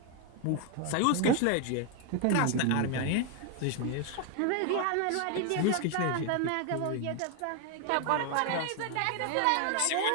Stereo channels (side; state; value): both; different; correlation 0.01